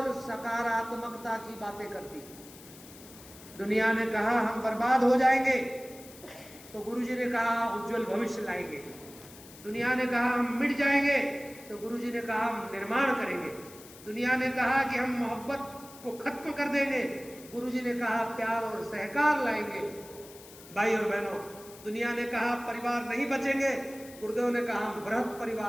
सकारात्मकता की बातें करती है। दुनिया ने कहा हम बर्बाद हो जाएंगे, तो गुरुजी ने कहा उज्जवल भविष्य लाएंगे। दुनिया ने कहा हम मिट जाएंगे, तो गुरुजी ने कहा हम निर्माण करेंगे। दुनिया ने कहा कि हम मोहब्बत को खत्म कर देंगे, गुरुजी ने कहा प्यार और सहकार लाएंगे। भाई और बहनों, दुनिया ने कहा परिवार नहीं बचेंगे, गुरुदेव ने कहा हम बृहद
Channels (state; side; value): noise; left; hiss, 19 dB below the sound